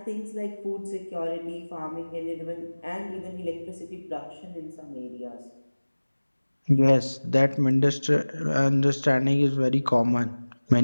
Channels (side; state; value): both; inverted; correlation -1.00